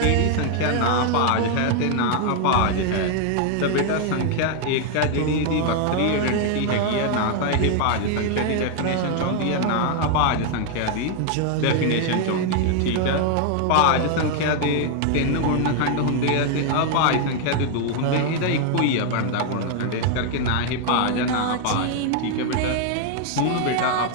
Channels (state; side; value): different; both; correlation 0.00